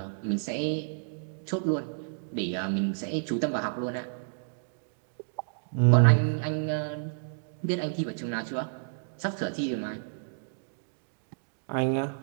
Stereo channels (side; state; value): left; silent; digital silence